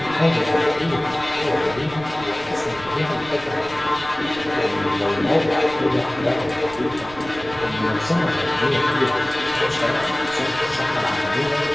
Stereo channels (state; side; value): noise; right; rumble, 18 dB below the sound